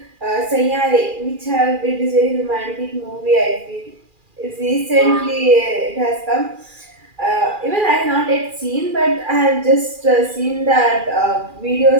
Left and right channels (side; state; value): left; late; 2.4 ms